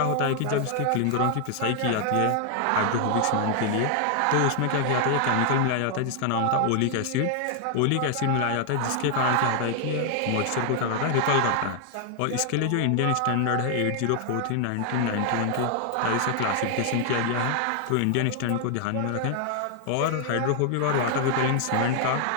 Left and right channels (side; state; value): both; different; correlation 0.00